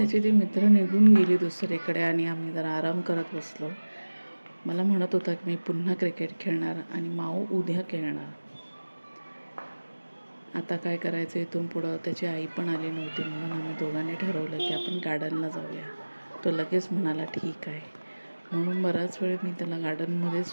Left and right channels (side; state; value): both; inverted; correlation -1.00